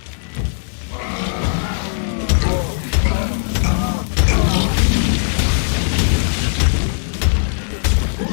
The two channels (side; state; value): right; silent; digital silence